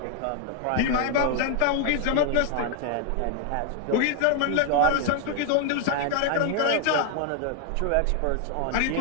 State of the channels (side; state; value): both; different; correlation 0.00